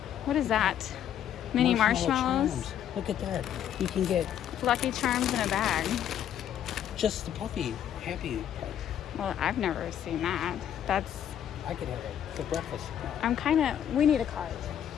What is that? Mini marshmallows? Charms. Look at that. You can get Lucky Charms in a bag. just the puffy, happy part. Well, I've never seen that. I could have it for breakfast. We need a cart.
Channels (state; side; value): quieter; right; 10.0 dB